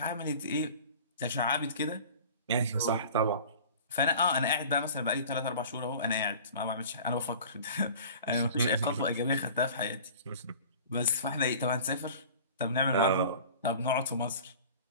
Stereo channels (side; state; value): both; inverted; correlation -0.42